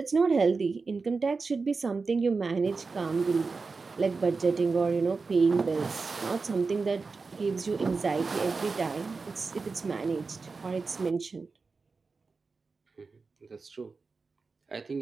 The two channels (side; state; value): left; quieter; 4.3 dB